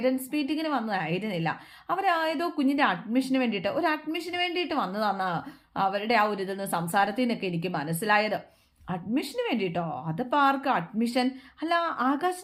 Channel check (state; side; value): identical; both; correlation 1.00